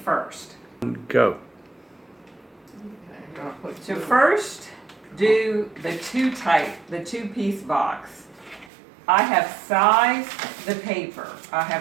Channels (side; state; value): left; drops out; at 8.7 s